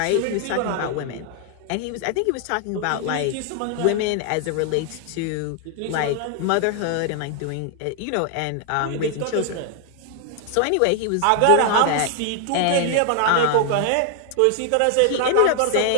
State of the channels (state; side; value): different; both; correlation 0.00